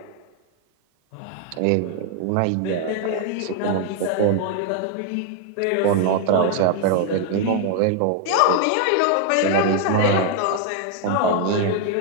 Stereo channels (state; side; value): different; both; correlation 0.01